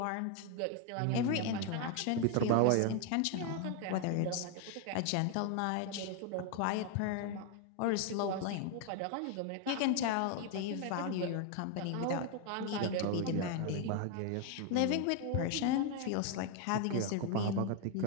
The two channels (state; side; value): different; both; correlation 0.01